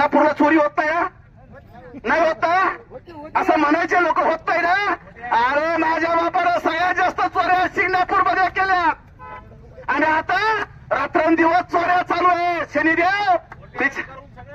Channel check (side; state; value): both; identical; correlation 1.00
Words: चोरी होत नाही ना? नाही होत असं म्हणायचे लोक होत नाही ना? अरे माझ्या बापाने सगळ्यात जास्त चोऱ्या सिंगणापूरमध्ये केल्यात. आणि आता रात्रंदिवस चोऱ्या चालू आहे. शनिदेव